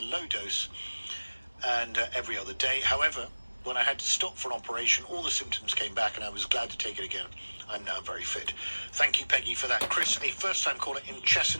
low dose and every other day. However, when I had to stop for an operation, all the symptoms came back and I was glad to take it again. I'm now very fit. Thank you, Peggy, for that. Chris, a first-time caller in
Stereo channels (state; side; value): inverted; both; correlation -1.00